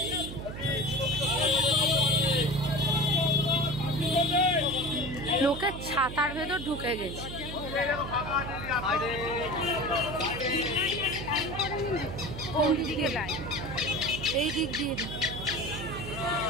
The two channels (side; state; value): right; noise; hum, 9 dB below the sound